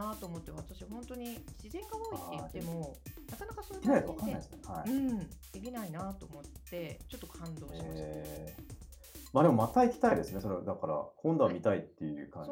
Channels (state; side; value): identical; both; correlation 1.00